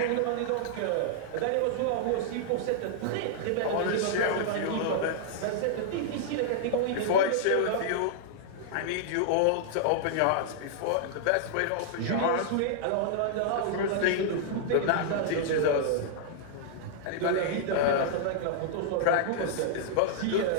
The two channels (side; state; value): both; different; correlation -0.01